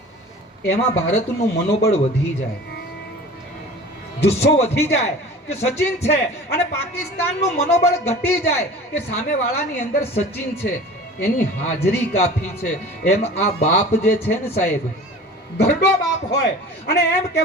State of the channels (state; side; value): normal; both; correlation 0.40